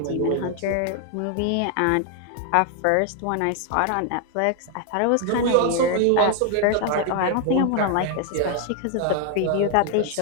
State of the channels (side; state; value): both; different; correlation 0.00